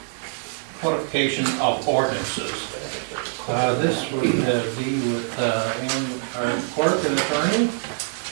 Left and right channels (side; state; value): left; silent; digital silence